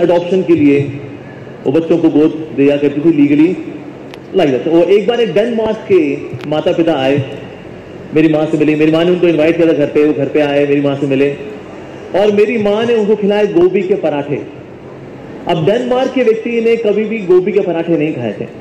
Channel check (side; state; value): both; identical; correlation 1.00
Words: adoption के लिए वो बच्चों को गोद दिया करती थी legally like that. तो एक बार एक डेनमार्क के माता पिता आए, मेरी माँ से मिले. मेरी माँ ने उनको इनवाइट किया था घर पे. वो घर पे आए, मेरी माँ से मिले और मेरी माँ ने उनको खिलाए गोभी के पराठे. अब डेनमार्क के व्यक्ति ने कभी भी गोभी के पराठे नहीं खाए थे.